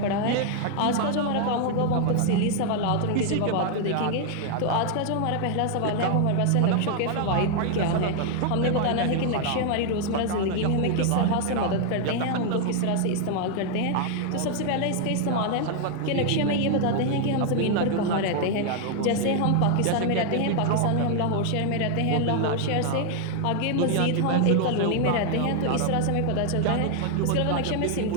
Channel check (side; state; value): both; different; correlation 0.00